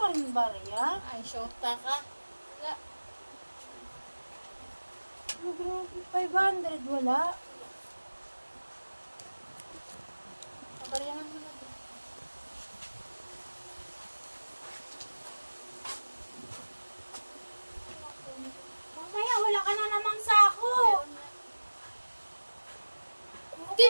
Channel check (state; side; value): inverted; both; correlation -1.00